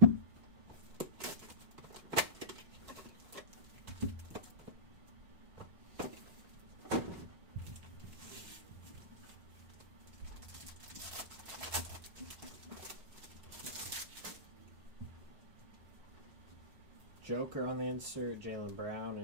Joker on the insert, Jaylen Brown,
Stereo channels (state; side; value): late; left; 5.2 ms